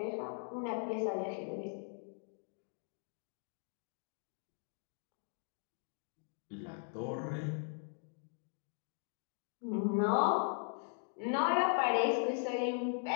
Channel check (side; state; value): right; silent; 52 dB below the other